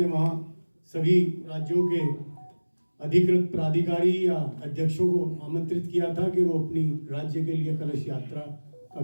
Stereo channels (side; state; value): both; inverted; correlation -1.00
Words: वहाँ सभी राज्यों के अधिकृत प्राधिकारी या अध्यक्षों को आमंत्रित किया था कि वो अपनी राज्य के लिए कलश यात्रा